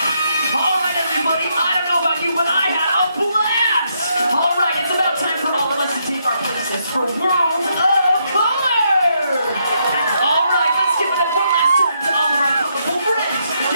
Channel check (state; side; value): inverted; both; correlation -0.77